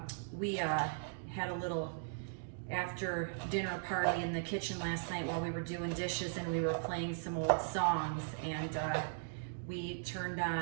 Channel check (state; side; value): silent; left; digital silence